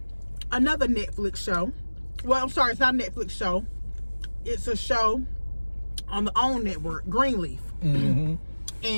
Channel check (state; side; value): inverted; both; correlation -1.00